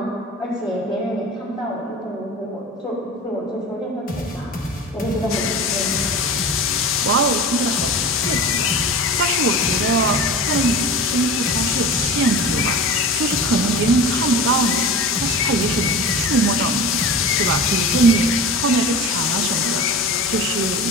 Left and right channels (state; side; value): normal; both; correlation 0.33